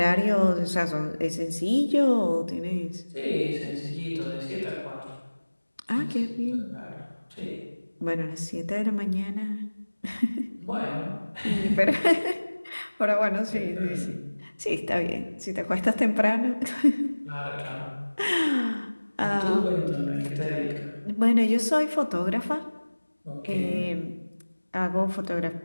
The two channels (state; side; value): inverted; both; correlation -1.00